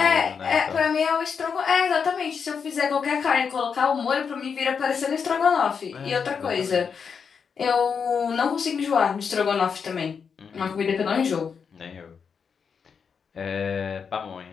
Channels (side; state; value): right; quieter; 6.3 dB